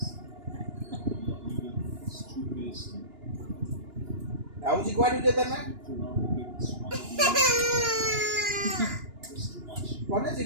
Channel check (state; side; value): late; left; 2.9 ms